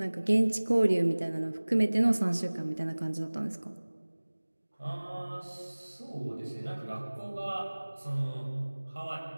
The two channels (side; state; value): both; inverted; correlation -1.00